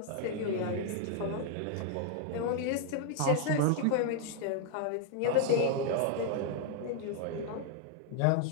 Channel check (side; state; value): both; different; correlation 0.00